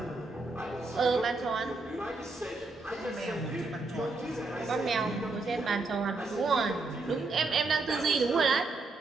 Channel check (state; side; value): quieter; left; 3.5 dB